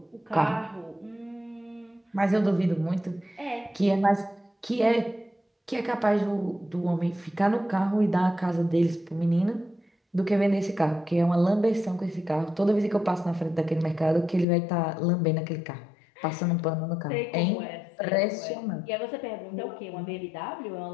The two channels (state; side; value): drops out; right; at 14.5 s